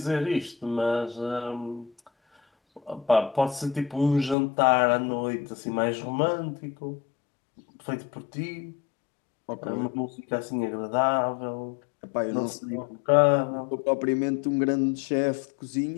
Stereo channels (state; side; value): drops out; right; at 4.4 s